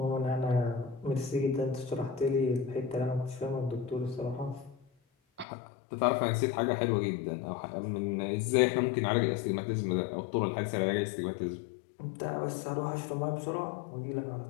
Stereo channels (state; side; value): drops out; right; at 5.5 s